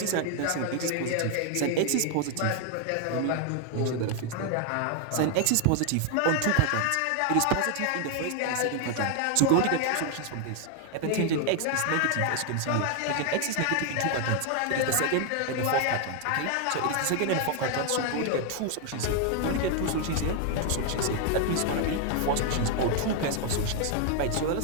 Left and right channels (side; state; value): both; different; correlation 0.00